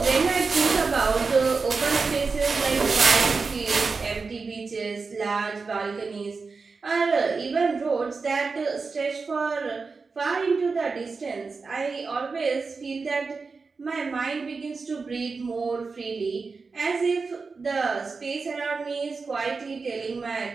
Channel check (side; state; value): left; quieter; 4.5 dB